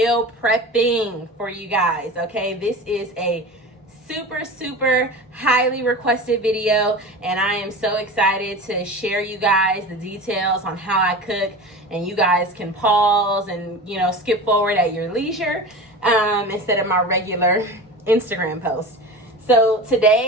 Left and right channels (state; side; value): normal; both; correlation 0.32